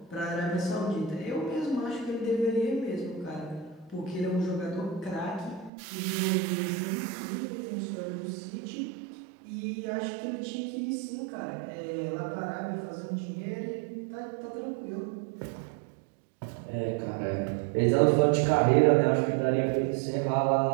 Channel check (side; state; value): left; drops out; at 5.7 s